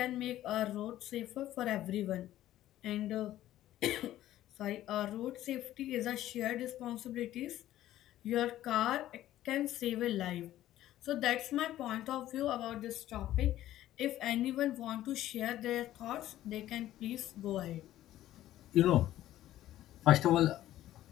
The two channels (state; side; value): quieter; right; 13.6 dB